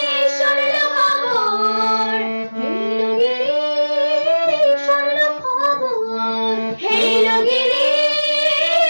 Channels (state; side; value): inverted; both; correlation -1.00